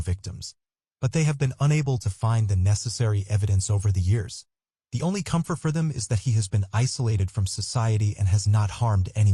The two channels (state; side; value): identical; both; correlation 1.00